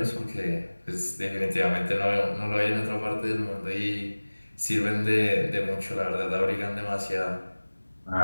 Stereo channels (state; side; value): inverted; both; correlation -1.00